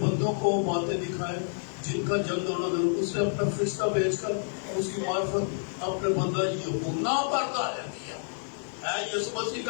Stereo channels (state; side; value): silent; right; digital silence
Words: بندوں کو باتیں دکھائے جن کا جلد ہونا ضرور، اس نے اپنا فرشتہ بھیج کر اس کی معرفت اپنے بندہ یوحنا پر ظاہر کیا ہے۔ یسوع مسیح